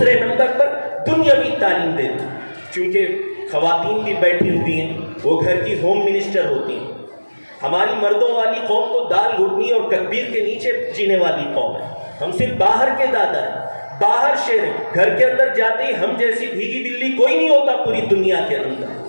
نمبر پر دنیاوی تعلیم دے دیں، چونکہ خواتین بھی بیٹھی ہوئی ہیں، وہ گھر کی ہوم منسٹر ہوتی ہیں۔ ہماری مردوں والی قوم تو دال گھٹنی اور تکبیر کے نیچے جینے والی قوم ہے، ہم صرف باہر کے دادا ہیں، باہر شیر ہیں، گھر کے اندر جاتے ہی ہم جیسی بھیگی بلی کوئی نہیں ہوتا پوری دنیا کے اندر۔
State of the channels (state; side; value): inverted; both; correlation -1.00